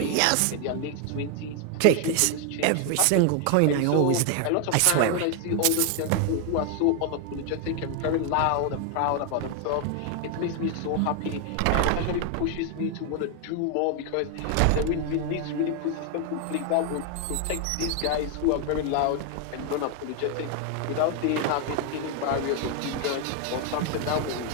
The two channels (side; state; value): both; different; correlation 0.01